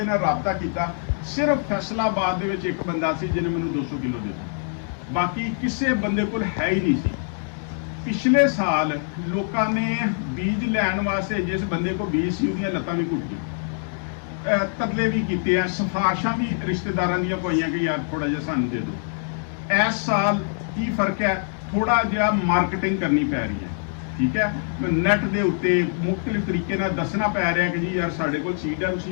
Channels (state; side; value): silent; right; 63 dB below the other